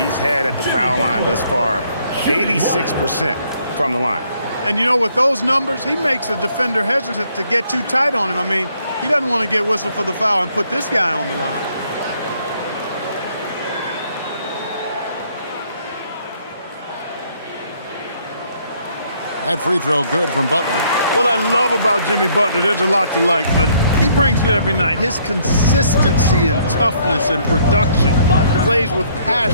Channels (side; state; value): both; inverted; correlation -0.66